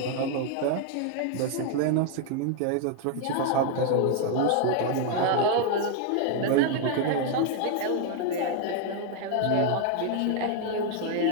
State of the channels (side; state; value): both; different; correlation 0.00